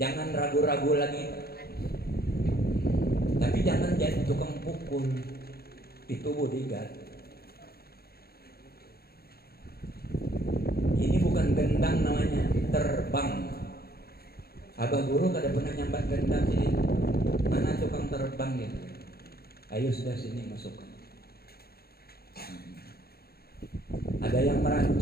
Jangan ragu-ragu lagi. Tapi jangan jadi tukang pukul. Itu bodyguard. Ini bukan gendang namanya, terbang. Abah guru kada pernah nyambat gendang sini. Mana tukang terbang ya? Ayo sudah sini masuk. Ada yang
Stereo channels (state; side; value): late; right; 0.45 ms